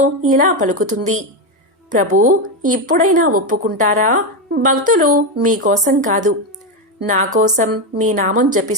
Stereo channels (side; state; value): both; normal; correlation 0.10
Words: ఇలా పలుకుతుంది. ప్రభూ, ఇప్పుడైనా ఒప్పుకుంటారా? భక్తులు మీకోసం కాదు, నా కోసం మీ నామం